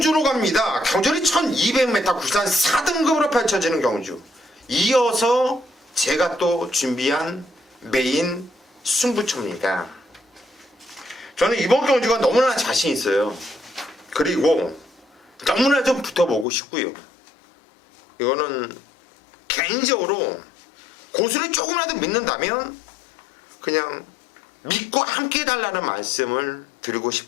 갑니다. 경주는 1200m 국산 4등급으로 펼쳐지는 경주. 이어서 제가 또 준비한 메인 승부처입니다. 저는 이번 경주가 너무나 자신 있어요. 그리고 너무나 좀 붙어보고 싶고요. 이거는 개인적으로 고수를 조금이라도 믿는다면 그냥 믿고 함께 해달라는 말씀을 드리고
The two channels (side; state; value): right; drops out; at 16.4 s